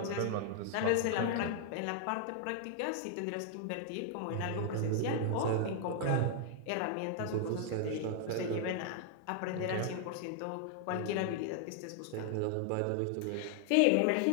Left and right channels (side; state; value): both; different; correlation 0.00